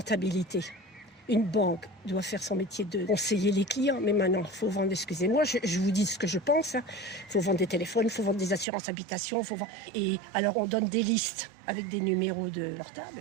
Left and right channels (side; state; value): left; drops out; at 8.7 s